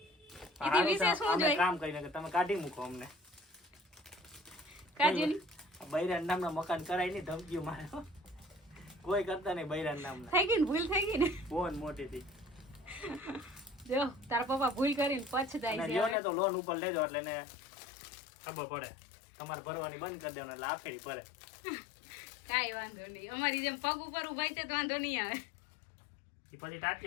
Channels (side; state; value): right; drops out; at 16.2 s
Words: એથી વિશેષ શું અમે જોઈએ? કામ કરીને કે તમે કાઢી મૂકો અમને. કાજુની બૈરાન નામના મકાન કરાય નહીં, ધમકીઓ મારે હો. કોઈ કરતા નહીં બૈરાન નામના. થઈ ગઈ ને ભૂલ થઈ ગઈ ને. ફોન મોટી થઈ. જો તારા પપ્પા ભૂલ કરીને પછતાય અને છે લ્યો ને હવે. તો લોન ઉપર લેજો એટલે એને ખબર પડે. તમારે ભરવાની બંધ કરી દેવાનું એટલે આફેડી ભરે. કાંઈ વાંધો નહીં, અમારી જેમ પગ ઉપર ઉભાઈ છે તો વાંધો નહીં આવે. એ પછી